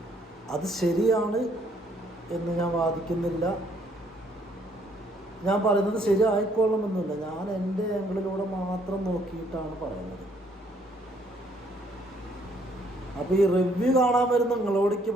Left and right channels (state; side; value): normal; both; correlation 0.66